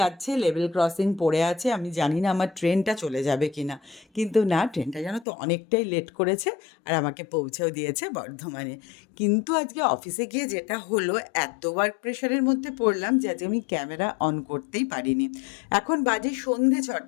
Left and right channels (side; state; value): right; drops out; at 5.2 s